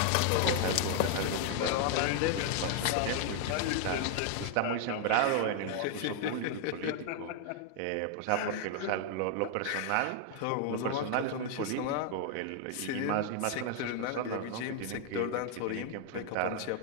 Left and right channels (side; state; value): both; different; correlation 0.00